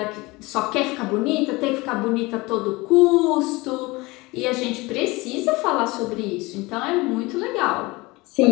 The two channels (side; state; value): right; quieter; 22.8 dB